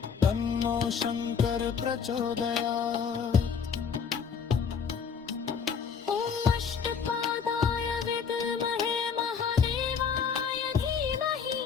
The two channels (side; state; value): right; quieter; 6.4 dB